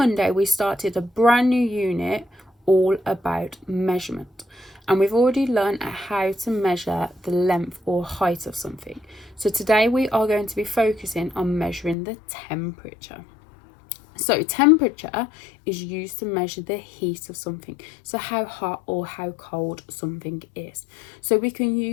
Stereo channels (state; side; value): drops out; right; at 12.0 s